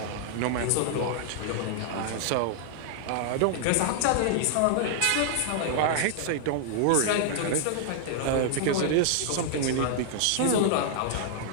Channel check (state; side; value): different; both; correlation -0.01